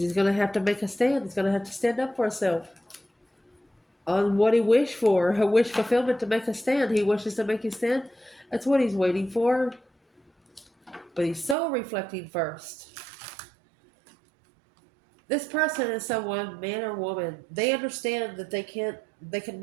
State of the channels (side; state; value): left; drops out; at 11.6 s